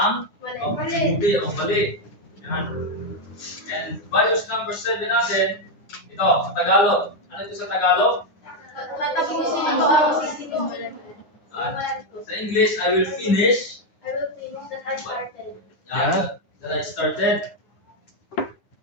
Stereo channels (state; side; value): late; right; 9.8 ms